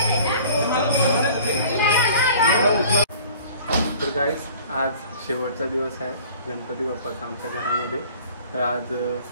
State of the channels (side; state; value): both; inverted; correlation -0.48